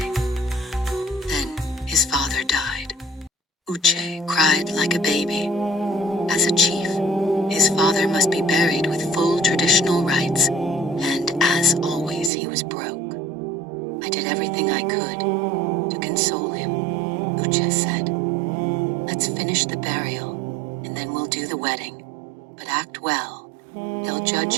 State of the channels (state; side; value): drops out; left; at 12.3 s